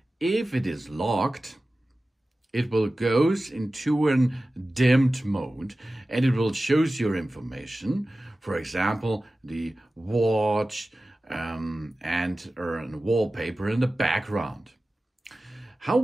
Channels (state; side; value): normal; both; correlation 0.96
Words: if it is locked, it will goes into a dimmed mode and it will shows your information. For example, the watch, and wallpaper in the background. How